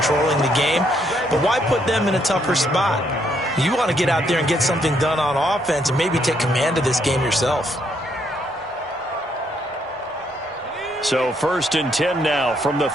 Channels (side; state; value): both; normal; correlation 0.72